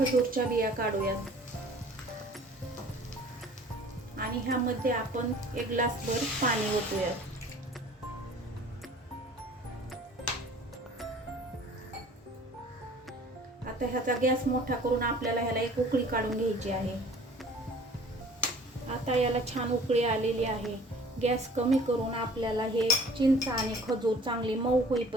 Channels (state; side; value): normal; both; correlation 0.49